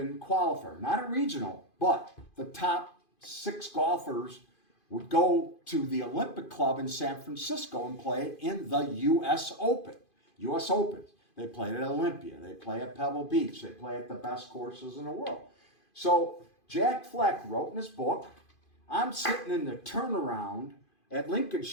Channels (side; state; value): right; late; 2.5 ms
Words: qualifier, not a regional, but the top 6 golfers would go to the Olympic Club in San Francisco and play in the U.S. Open. U.S. Opens. They played at Olympia. They play at Pebble Beach. They play at the best courses in the world. So Jack Fleck wrote in his book, I'm sitting in the turnaround at